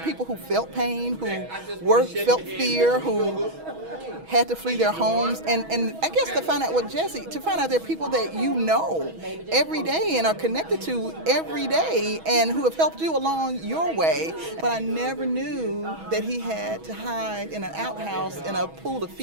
who felt pain, who felt fear, who had to flee their homes, and I guess to find out there are people that you know every day and are connected to every day and who have helped you along your way. But I never knew that he had to hide in an outhouse in a pool of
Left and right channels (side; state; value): left; late; 6.2 ms